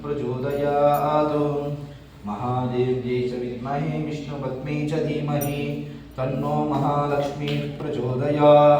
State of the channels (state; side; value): identical; both; correlation 1.00